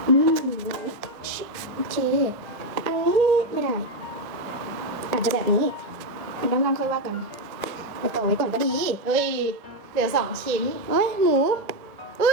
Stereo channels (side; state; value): left; late; 1.7 ms